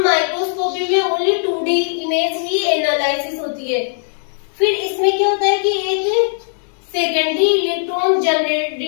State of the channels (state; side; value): silent; right; 64 dB below the other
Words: 2D इमेज ही एनालिसिस होती है। फिर इसमें क्या होता है कि एक सेकेंडरी इलेक्ट्रॉन